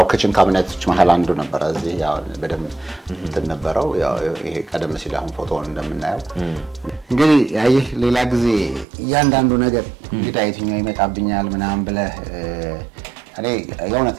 ክችን ካቢኔቶች መሃል አንዱ ነበር እዚህ ያው በደም እንትን ነበረው ያው ይሄ ቀደም ሲል አሁን ፎቶውን እንደምናየው እንግዲህ ያይህ ሌላ ጊዜ እያንዳንዱ ነገር እንግዲህ የትኛው ይመጣብኛል ምናምን ብለ እኔ የእውነት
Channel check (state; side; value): drops out; left; at 8.8 s